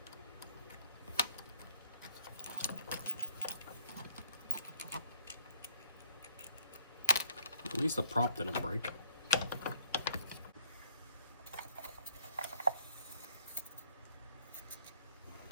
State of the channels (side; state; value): both; inverted; correlation -0.62